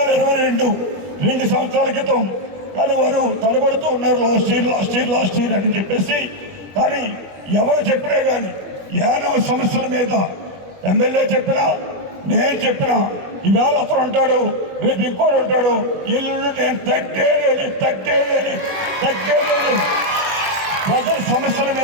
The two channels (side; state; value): left; late; 21 ms